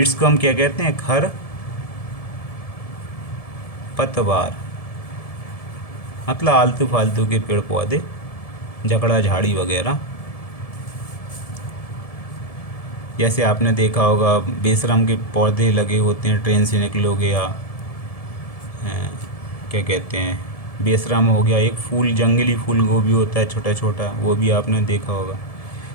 को हम क्या कहते हैं? खर पतवार, मतलब आलतू फालतू के पेड़ पौधे, जकड़ा झाड़ी वगैरह। जैसे आपने देखा होगा बेशरम के पौधे लगे होते हैं, ट्रेन से निकलोगे या क्या कहते हैं, बेशरम हो गया, एक फूल, जंगली फूल गोभी होता है छोटा छोटा, वो भी आपने देखा होगा।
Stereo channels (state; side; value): late; right; 1.7 ms